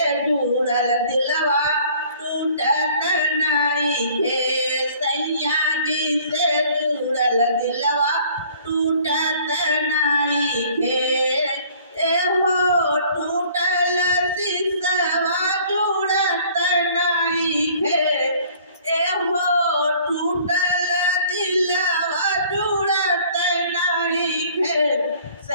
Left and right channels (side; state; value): both; inverted; correlation -0.54